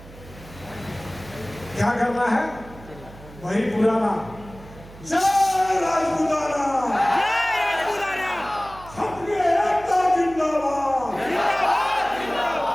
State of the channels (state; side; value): noise; right; hum, 19 dB below the sound